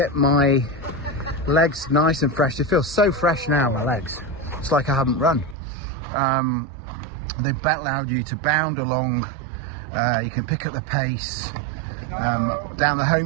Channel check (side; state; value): left; drops out; at 5.6 s